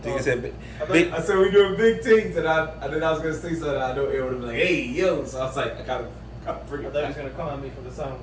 I said we're doing big things, and then I was gonna say something. I know it would have been like, "Hey, yo!" So I was like, I gotta bring it. I thought he was gonna come at me for the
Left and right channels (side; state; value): both; identical; correlation 1.00